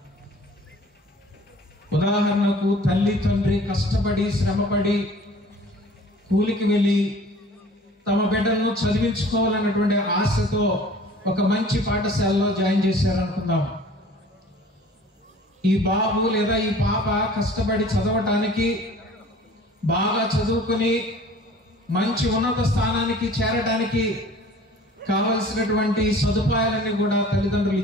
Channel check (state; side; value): normal; both; correlation 0.48